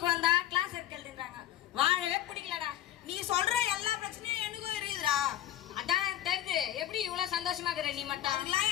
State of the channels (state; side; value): quieter; right; 12.6 dB